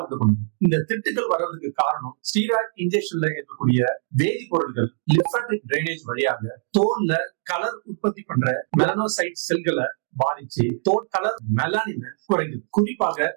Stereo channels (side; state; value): left; silent; 63 dB below the other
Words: உண்டு பண்ணுது. இந்த திட்டுக்கள் வர்றதுக்கு காரணம் ஸ்டீராய்டு இன்ஜெக்ஷன்ல இருக்கக்கூடிய வேதிப்பொருட்கள் லிம்பாட்டிக் டிரைனேஜ் வழியாக தோல்ல கலர் உற்பத்தி பண்ற மெலனோசைட் செல்களை பாதிச்சு தோல் கலர் மெலானின் குறைக்குது. குறிப்பாக